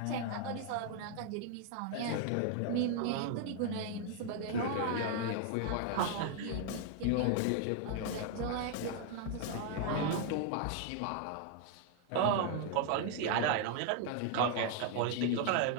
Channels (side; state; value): both; different; correlation 0.00